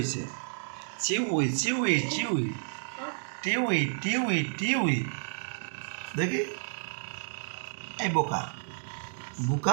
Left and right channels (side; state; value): left; silent; digital silence